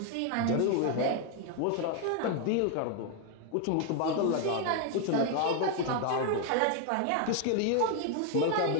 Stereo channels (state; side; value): different; both; correlation 0.01